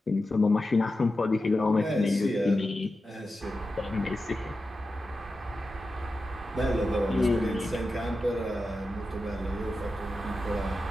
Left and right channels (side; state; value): both; normal; correlation 0.91